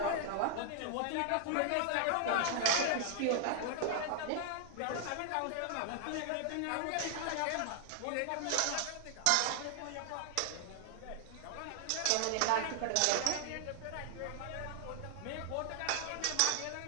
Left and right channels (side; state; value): both; different; correlation 0.00